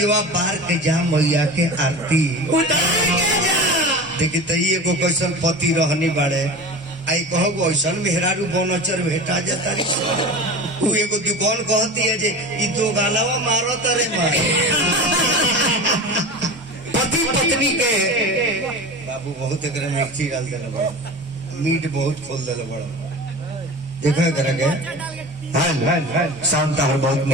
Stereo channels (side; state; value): both; normal; correlation 0.32